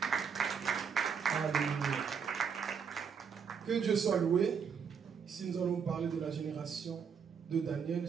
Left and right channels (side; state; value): left; quieter; 6.7 dB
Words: Alléluia. Que Dieu soit loué. Ici nous allons parler de la génération de Daniel.